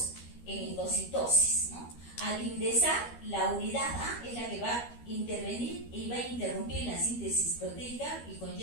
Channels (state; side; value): late; right; 13 ms